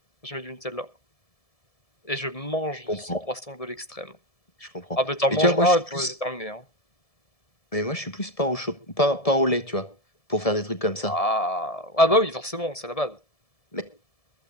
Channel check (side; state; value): right; late; 1.7 ms